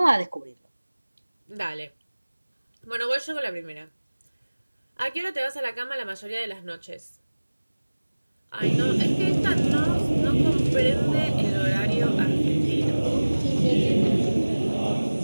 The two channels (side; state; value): both; inverted; correlation -1.00